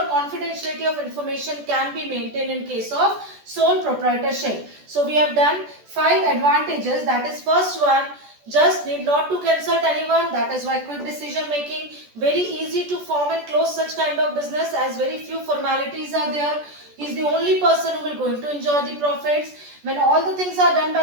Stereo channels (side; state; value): left; late; 14 ms